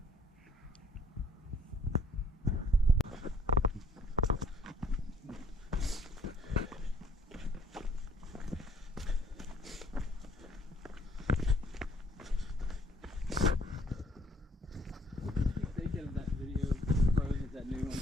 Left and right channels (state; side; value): normal; both; correlation 0.63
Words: Thinking of that video, Frozen, that new